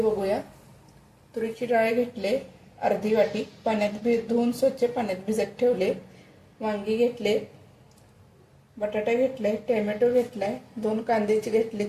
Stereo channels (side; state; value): both; identical; correlation 1.00